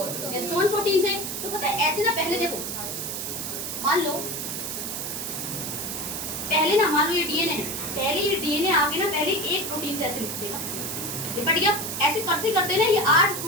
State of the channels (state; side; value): noise; right; hiss, 4 dB below the sound